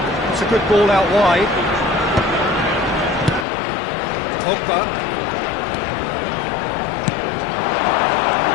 It's a good ball out wide. Pogba.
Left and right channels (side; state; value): right; drops out; at 3.5 s